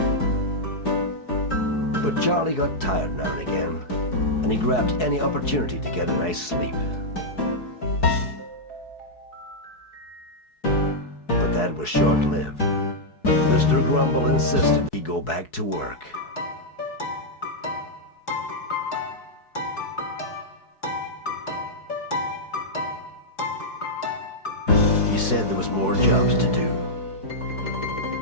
But Charlie got tired now and again, and he grabbed any opportunity to get a nice sleep. But that was short-lived. Mr. Grumble insisted he go back to work. He said there was more jobs to do.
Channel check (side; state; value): right; late; 4.7 ms